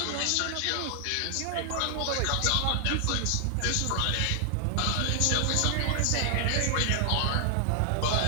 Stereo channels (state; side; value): different; both; correlation 0.00